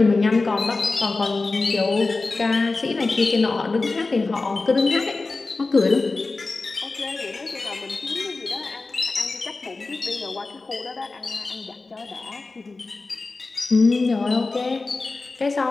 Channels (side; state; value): right; quieter; 3.6 dB